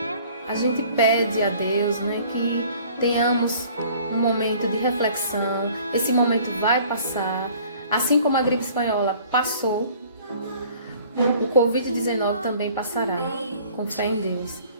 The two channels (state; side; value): inverted; both; correlation -0.52